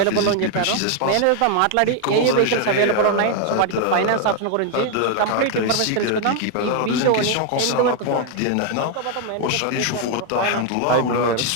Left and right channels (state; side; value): different; both; correlation 0.00